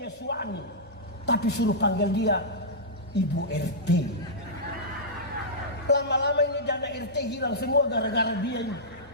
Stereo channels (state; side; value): normal; both; correlation -0.13